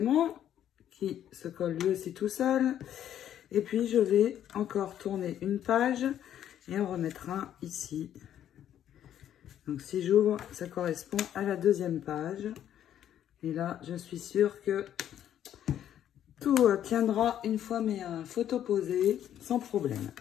qui se colle lui aussi tout seul. Et puis, je vais encore tourner une page et en remettre un ici. Donc, si j'ouvre, ça correspond à la deuxième page. Et là, je suis sûre que tout tiendra une fois mes photos posées sans problème.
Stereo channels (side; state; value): right; quieter; 10.6 dB